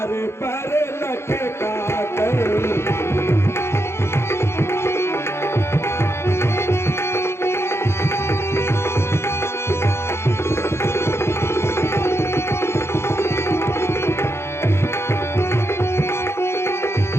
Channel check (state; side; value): late; right; 0.12 ms